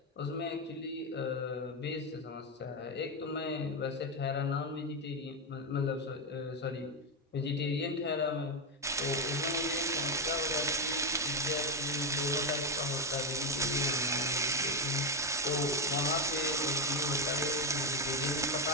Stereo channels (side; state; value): both; normal; correlation 0.08